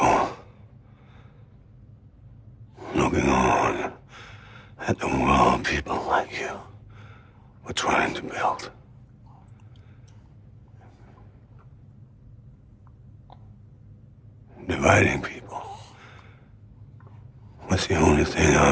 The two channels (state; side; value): identical; both; correlation 1.00